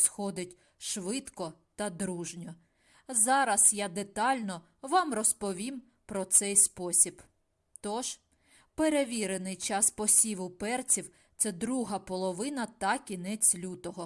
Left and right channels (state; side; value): identical; both; correlation 1.00